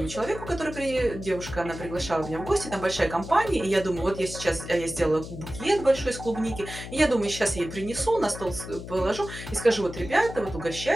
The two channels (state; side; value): noise; left; hum, 11 dB below the sound